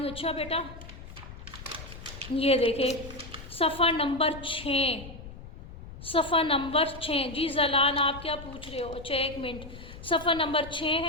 अच्छा बेटा ये देखें सफ़ा नंबर 6, सफ़ा नंबर 6। जी जलान, आप क्या पूछ रहे हो? अच्छा, 1 मिनट। सफ़ा नंबर 6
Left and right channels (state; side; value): noise; left; rumble, 14 dB below the sound